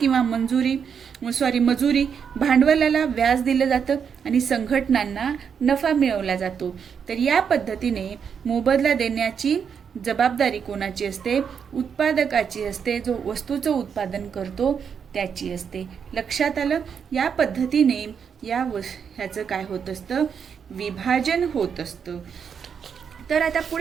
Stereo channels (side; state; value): left; quieter; 7.0 dB